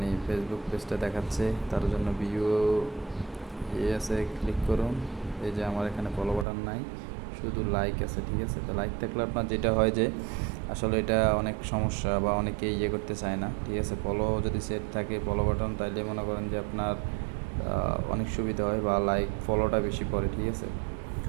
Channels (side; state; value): left; drops out; at 6.5 s